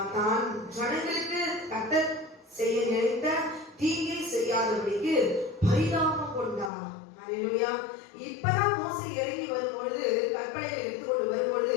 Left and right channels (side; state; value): right; drops out; at 6.7 s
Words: தான் ஜனங்களுக்கு கர்த்தர் செய்ய நினைத்த தீங்கை செய்யாதபடிக்கு பரிதாபம் கொண்டார். ஹல்லேலூயா. இப்பதான் மோசே இறங்கி வரும்பொழுது கற்பனையை எடுத்துக்கொண்டு வரும்பொழுது